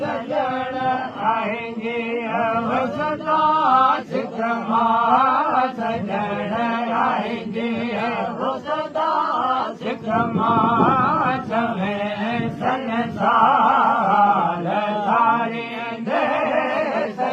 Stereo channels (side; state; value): both; identical; correlation 1.00